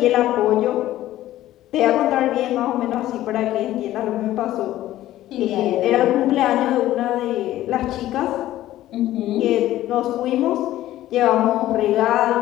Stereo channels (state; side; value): quieter; right; 14.3 dB